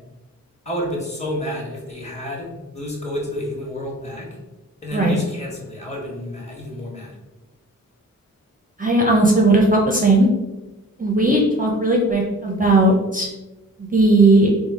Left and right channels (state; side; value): normal; both; correlation 0.47